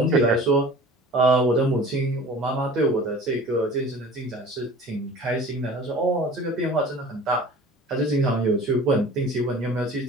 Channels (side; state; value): both; normal; correlation 0.42